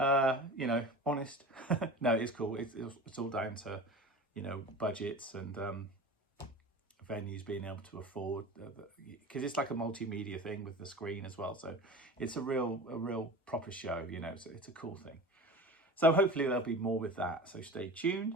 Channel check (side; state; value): both; normal; correlation 0.34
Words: You know, honest. No, it's cool. It's all down to, you know, budgets and venues being able to afford, because it's like a multimedia thing with the screen as well. So it's a real proper show, you know, so it's a cool thing. So hopefully there'll be more with that. So stay